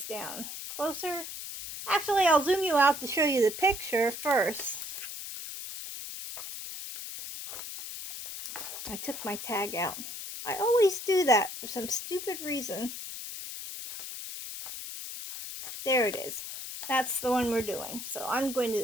down closer. Actually, I'll zoom you out to show you the picture first. I took my tag out. I always do that for some stupid reason. There it is. That's the one we're doing. So I'm going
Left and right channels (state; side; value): noise; left; hiss, 8 dB below the sound